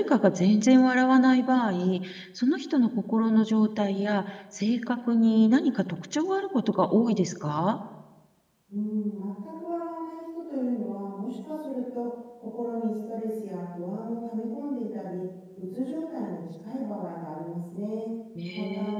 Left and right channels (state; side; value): identical; both; correlation 1.00